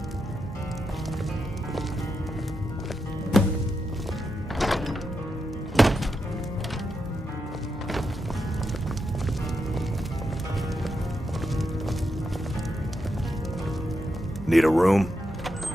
Need a room?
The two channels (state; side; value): normal; both; correlation 0.85